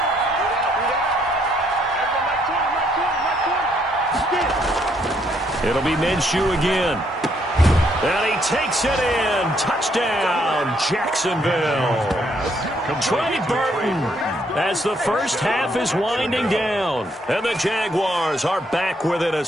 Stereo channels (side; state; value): both; normal; correlation 0.71